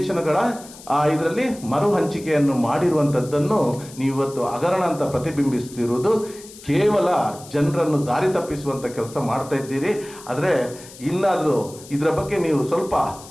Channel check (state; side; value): noise; left; hiss, 18 dB below the sound